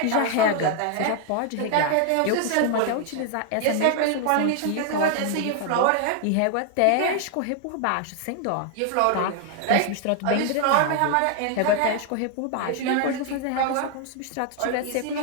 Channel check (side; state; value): both; different; correlation 0.00